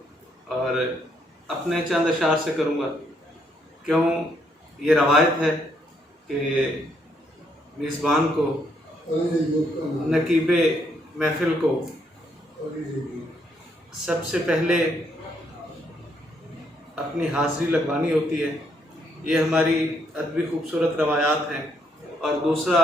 اور اپنے چند اشعار سے کروں گا، کیوں یہ روایت ہے کہ میزبان کو، نقیب محفل کو سب سے پہلے اپنی حاضری لگوانی ہوتی ہے۔ یہ ہماری ادبی خوبصورت روایات ہیں۔ اور دوسرا،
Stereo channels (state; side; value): normal; both; correlation 0.73